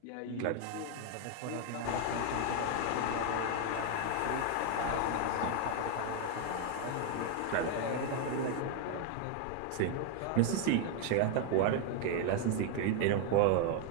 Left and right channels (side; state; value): both; different; correlation 0.00